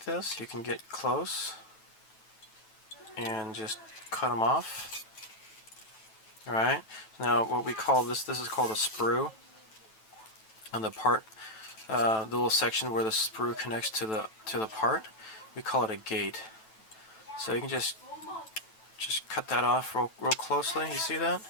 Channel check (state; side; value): late; right; 9.1 ms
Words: this, you can get close and just cut them off. Alright, now what we call this is called a sprue. On the part, the little section where the sprue connects to the part, we call it a gate. So you can just cut that off real closely. You see that?